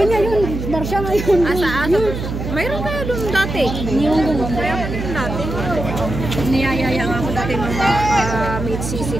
nga yun, Barca ngayon. Mayroon na doon dati. Yung ganun. Mayroon din dati. Niyayaya nga ako dati mga mid-sisi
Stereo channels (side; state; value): right; noise; hum, 5 dB below the sound